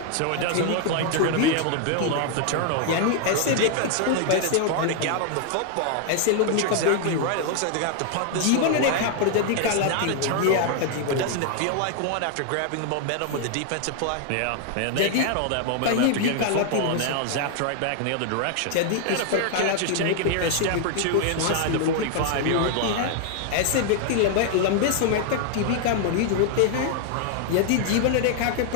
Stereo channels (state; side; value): different; both; correlation 0.00